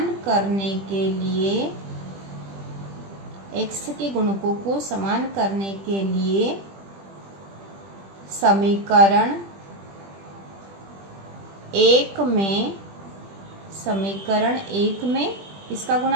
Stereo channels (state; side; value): late; left; 20 ms